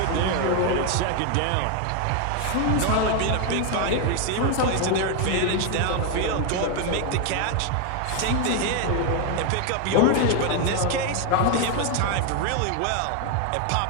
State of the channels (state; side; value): different; both; correlation 0.01